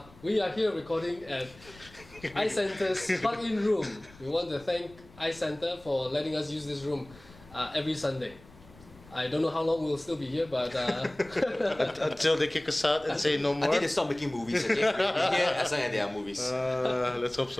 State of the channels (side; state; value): left; noise; rumble, 23 dB below the sound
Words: are here recording at iCenter's plug-in room. We want to thank iCenter for letting us use this room every Sunday. I don't know how long we'll still be here, but Until they kick us out and say no more. Until they stop making movies, okay? We're here as long as there are movies. Let's hope